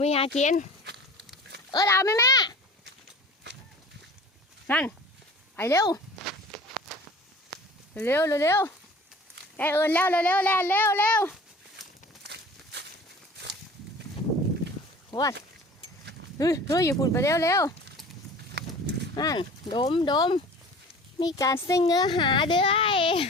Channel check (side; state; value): both; normal; correlation 0.42